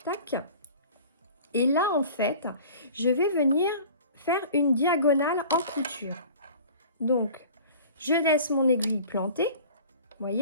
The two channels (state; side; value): inverted; both; correlation -0.44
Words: tac. Et là, en fait, je vais venir faire une diagonale en couture. Donc, je laisse mon aiguille plantée, vous